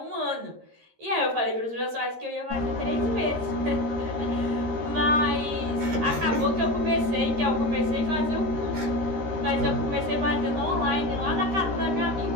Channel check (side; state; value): left; late; 13 ms